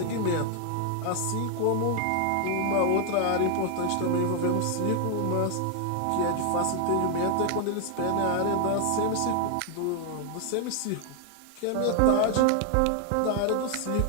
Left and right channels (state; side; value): different; both; correlation 0.00